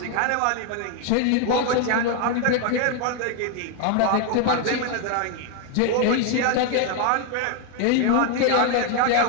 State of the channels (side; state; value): both; different; correlation 0.01